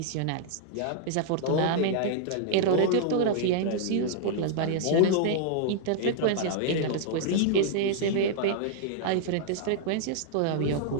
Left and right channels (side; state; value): both; different; correlation -0.01